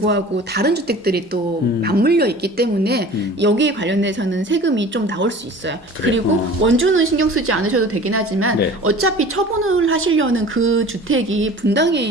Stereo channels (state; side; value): normal; both; correlation 0.42